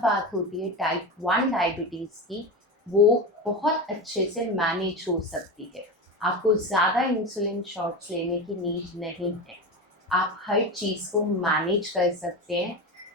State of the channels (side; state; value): both; normal; correlation 0.22